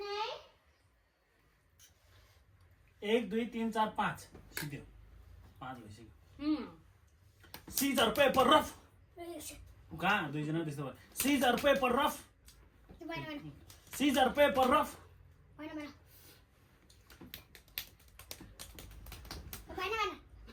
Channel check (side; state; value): both; identical; correlation 1.00